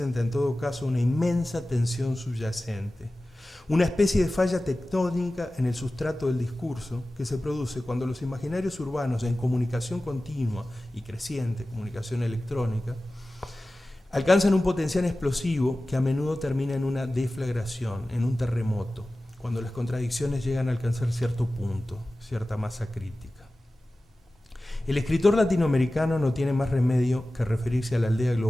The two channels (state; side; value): normal; both; correlation 0.96